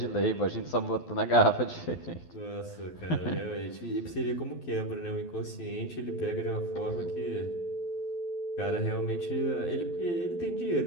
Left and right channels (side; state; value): right; late; 12 ms